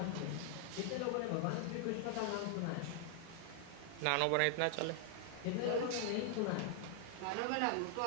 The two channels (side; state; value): both; different; correlation 0.00